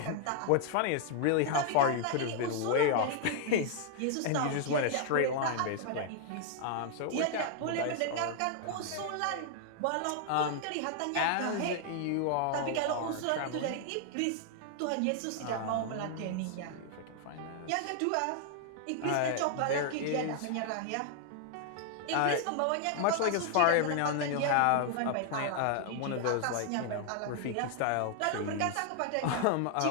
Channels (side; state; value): both; different; correlation -0.01